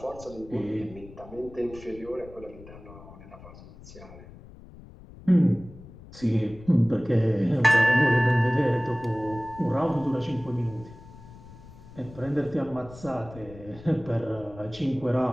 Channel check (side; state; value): left; noise; rumble, 18 dB below the sound